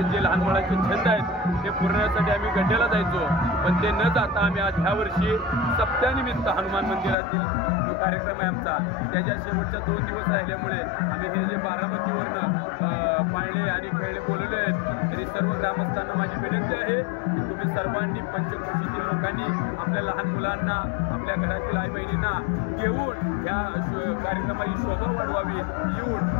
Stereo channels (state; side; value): drops out; right; at 7.2 s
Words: जे लहान मुलांचे छंद आहेत ते पुरवण्यासाठी आम्ही गड्ड्याला जायचो। पण ते न जाता आम्ही आज ह्या वर्षी सप्त्यानिमित्त हनुमान मंदिरातील जो कार्यक्रम आहे आमचा, त्याच्या शेवटच्या 2 दिवस राहिल्यामुळे आम्ही हे जे बारामतीवरनं पाळणे आणि खेळणे बोलवले आहेत, तरी सर्व ग्रामस्थांना माझी विनंती आहे की तुम्ही सर्वांनी, पंचक्रोशीतील लोकांनी आपल्या लहान मुलांना, आपल्या घरातील आई बहिणींना घेऊन या कार्यक्रमाची शोभा वाढवावी। येऊन